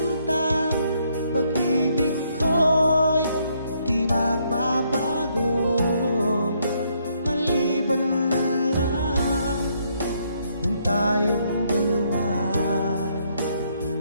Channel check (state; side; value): inverted; both; correlation -0.72